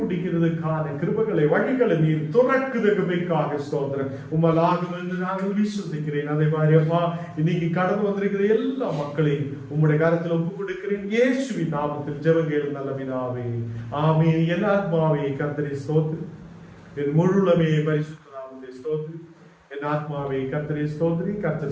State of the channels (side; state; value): both; identical; correlation 1.00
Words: முடிக்கிறதுக்கான கிருபைகளை வழிகளை நீர் துறக்குதற்காக ஸ்தோத்திரம். உம்மலாகும் என்று நாங்கள் விசுவசிக்கிறேன். அதே மாதிரி அப்பா இன்னைக்கு கடந்து வந்திருக்கிற எல்லா மக்களையும் உம்முடைய கரத்தில் ஒப்புக் கொடுக்கிறேன். இயேசுவின் நாமத்தில் ஜெபங்கள் நல்ல பிதாவே, ஆமென். என் ஆத்மாவே கர்த்தரை ஸ்தோத்திரி, என் முழுலமே பரிசுத்த நாமத்தை ஸ்தோத்திரி. என் ஆத்மாவே கர்த்தரை ஸ்தோத்திரி,